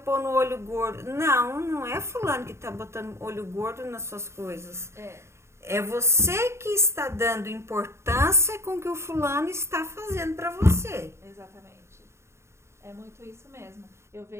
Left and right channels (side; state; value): left; late; 0.13 ms